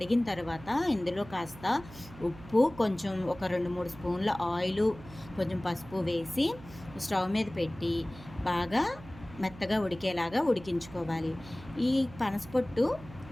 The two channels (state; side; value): noise; right; hum, 17 dB below the sound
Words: తర్వాత ఇందులో కాస్త ఉప్పు, కొంచెం ఒక 2-3 స్పూన్ల ఆయిలు, కొంచెం పసుపు వేసి స్టవ్ మీద పెట్టి బాగా మెత్తగా ఉడికేలాగా ఉడికించుకోవాలి. ఈ పనసపొట్టు